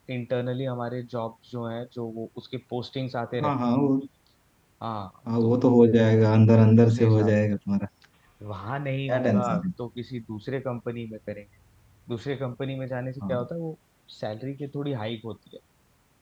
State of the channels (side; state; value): both; identical; correlation 1.00